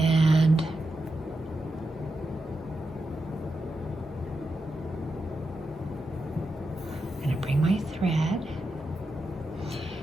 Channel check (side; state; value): both; normal; correlation 0.87